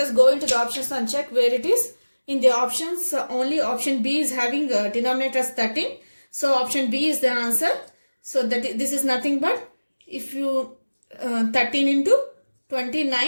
us go into the options and check where it is. In the options, only option B is having denominator as 13. So option B is the answer. So this is nothing but if you 13 into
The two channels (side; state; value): both; inverted; correlation -1.00